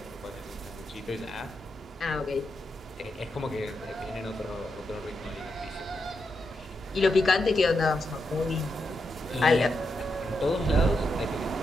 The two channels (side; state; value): both; normal; correlation 0.84